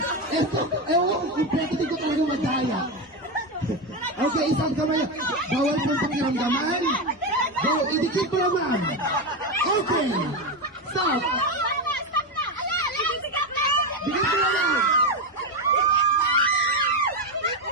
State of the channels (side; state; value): both; normal; correlation 0.12